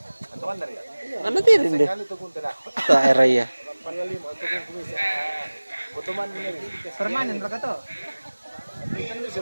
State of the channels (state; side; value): inverted; both; correlation -1.00